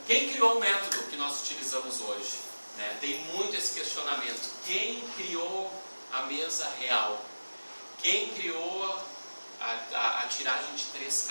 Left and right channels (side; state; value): both; inverted; correlation -1.00